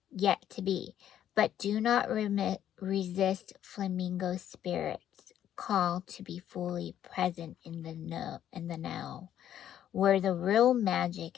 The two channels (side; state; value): right; quieter; 10.7 dB